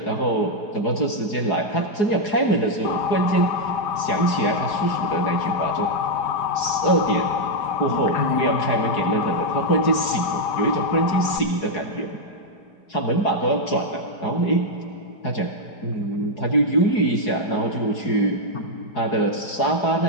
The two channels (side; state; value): right; late; 4.8 ms